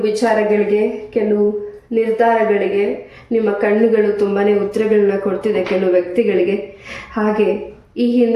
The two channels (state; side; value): identical; both; correlation 1.00